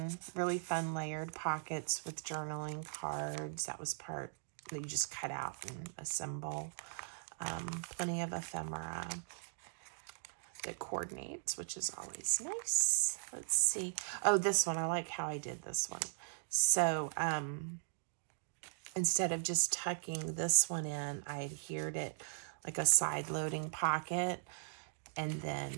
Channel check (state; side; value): silent; left; digital silence